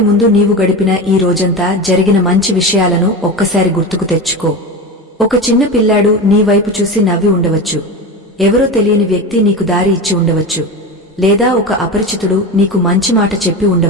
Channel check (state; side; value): normal; both; correlation 0.24